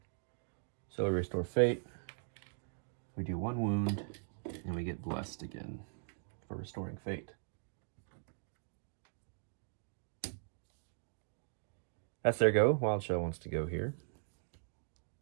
So we restore fate. We do 1 wound, and we get blessed again for restoring fate. That's their go. Wild Shell wants to go here.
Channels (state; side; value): silent; left; digital silence